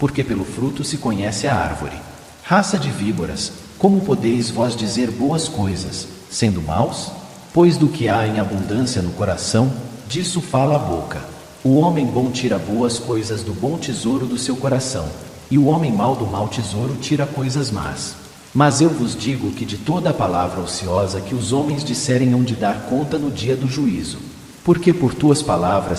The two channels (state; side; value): identical; both; correlation 1.00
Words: pelo fruto se conhece a árvore. Raça de víboras, como podeis vós dizer boas coisas, sendo maus? Pois do que há em abundância no coração, disso fala a boca. O homem bom tira boas coisas do bom tesouro do seu coração, e o homem mau do mau tesouro tira coisas más. Mas eu vos digo que de toda a palavra ociosa que os homens disserem hão de dar conta no dia do juízo. Porque por tuas